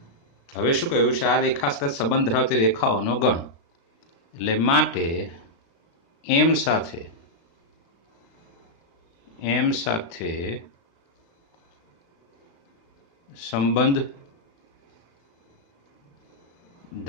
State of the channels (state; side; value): late; right; 36 ms